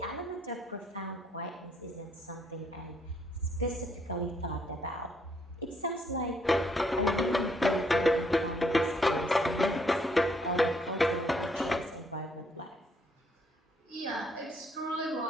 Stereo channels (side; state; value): both; normal; correlation 0.69